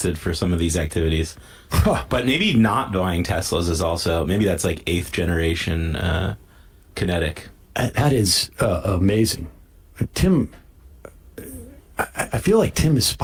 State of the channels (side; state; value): both; identical; correlation 1.00